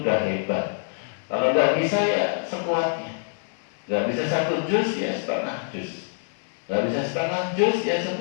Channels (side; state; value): right; silent; 62 dB below the other